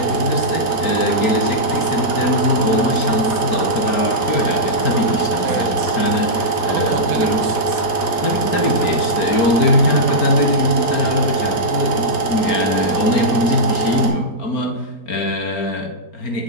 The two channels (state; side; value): late; right; 3.8 ms